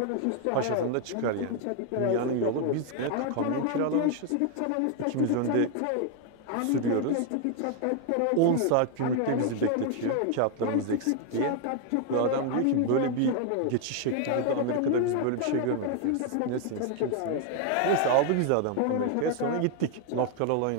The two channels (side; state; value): both; different; correlation 0.00